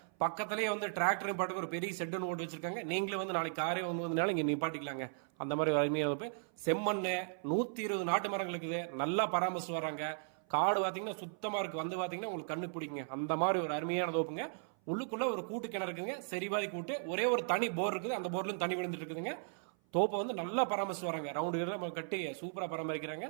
பக்கத்திலேயே வந்து டிராக்டர் பாட்டுக்கு ஒரு பெரிய ஷெட் ஒன்று ஓட்டு வச்சிருக்காங்க. நீங்களே வந்து நாளைக்கு காரே வந்ததுனால இங்க நிப்பாட்டிக்கலாங்க. அந்த மாதிரி ஒரு அருமையான தோப்பு. செம்மண்ணு 120 நாட்டு மரங்கள் இருக்குது. நல்லா பராமரிச்சு வராங்க. காடு பாத்தீங்கன்னா சுத்தமா இருக்கு. வந்து பாத்தீங்கன்னா உங்களுக்கு கண்ணு பிடிக்குங்க. அந்த மாதிரி ஒரு அருமையான தோப்புங்க. உள்ளுக்குள்ள ஒரு கூட்டு கிணறு இருக்குங்க. சரிவாதி கூட்டு. ஒரே ஒரு தனி போர் இருக்குது. அந்த போர்ல தண்ணி விழுந்துட்டு இருக்குதுங்க. தோப்பை வந்து நல்லா பராமரிச்சு வராங்க. ரவுண்டு கட்டி சூப்பரா பராமரிக்கிறாங்க.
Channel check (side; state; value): left; silent; 53 dB below the other